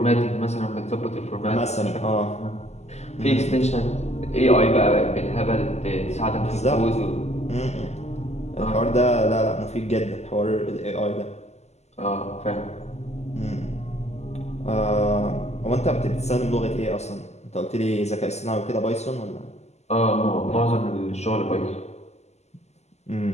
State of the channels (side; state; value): right; late; 0.32 ms